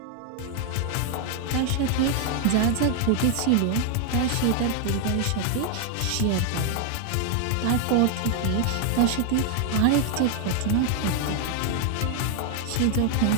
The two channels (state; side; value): different; both; correlation 0.00